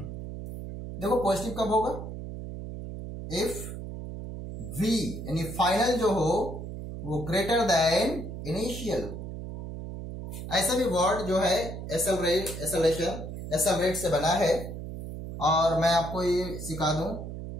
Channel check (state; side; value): noise; right; hum, 8 dB below the sound